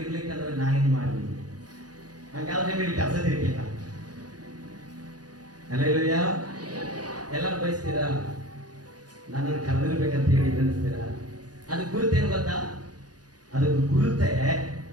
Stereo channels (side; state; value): left; late; 0.69 ms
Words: ಇರ್ಲಿಕ್ಕಂದ್ರೆ ನಾ ಏನ್ ಮಾಡ್ಲಿ? ಹಂಗಾದ್ರೆ ನಿಮಗೆ ಕೆಲಸ ತಿರ್ಲಿಲ್ಲ. ಅಲ್ಲೆಲ್ಲಯ್ಯ ಎಲ್ಲರೂ ಬಯಸ್ತೀರಾ ನನ್ನನ್ನು ಕರೆದಿರ್ಬೇಕಂತ ಹೇಳಿ ಅನಿಸ್ತೀರಾ? ಅದು ಗುರುತೇನು ಗೊತ್ತಾ? ಅದಕ್ಕೆ ಗುರುತೆ